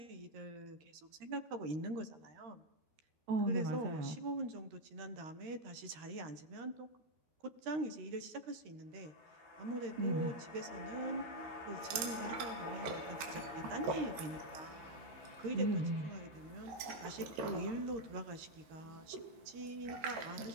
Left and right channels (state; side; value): late; left; 13 ms